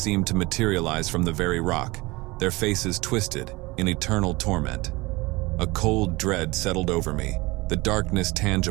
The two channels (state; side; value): quieter; left; 22.7 dB